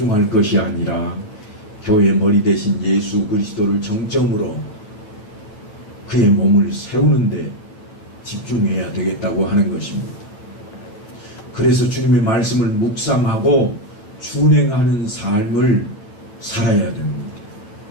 것이 아니라 교회의 머리 대신 예수 그리스도를 정점으로 그의 몸을 세우는데 집중해야 되겠다고 하는 것입니다. 그래서 주님의 말씀을 묵상하고 준행하는 삶을 살아야 됩니다.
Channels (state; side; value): late; right; 9.2 ms